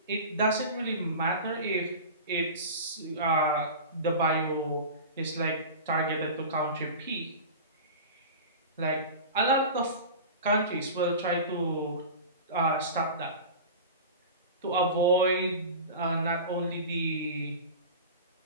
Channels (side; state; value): both; inverted; correlation -0.32